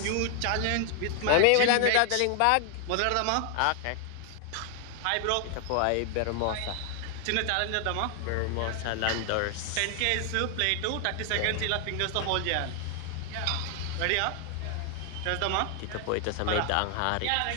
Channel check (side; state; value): both; different; correlation 0.00